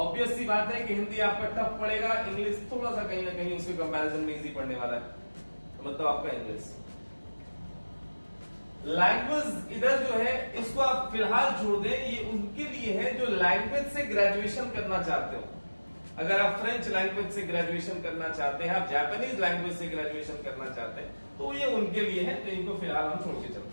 सी बात है कि हिंदी आपका टफ पड़ेगा, इंग्लिश थोड़ा सा कहीं ना कहीं उसके कंपैरिजन में इजी पड़ने वाला है, तो मतलब आपका इंग्लिश। लैंग्वेज इधर जो है इसको आप फिलहाल छोड़ दें, ये उनके लिए है जो लैंग्वेज से ग्रेजुएशन करना चाहते हो। अगर आप फ्रेंच लैंग्वेज से ग्रेजुएशन करना चाहते हैं, आप जापानीज लैंग्वेज से ग्रेजुएशन करना चाहते हैं, तो ये उनके लिए है, तो इनको फिलहाल हम छोड़ के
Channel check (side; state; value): both; inverted; correlation -1.00